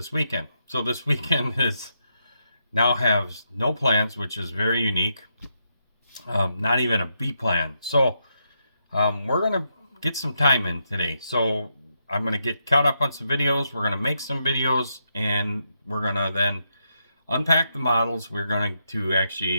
weekend. So this weekend is now has no plans, which is very unique. Not even a B plan. So we're going to get some time in today. So I'm going to get caught up on some videos. We're going to make some videos, and we're going to then unpack the models. We're going to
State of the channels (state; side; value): inverted; both; correlation -0.81